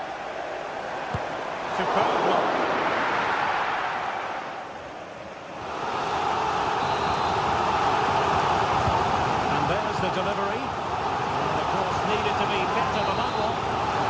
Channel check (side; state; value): both; identical; correlation 1.00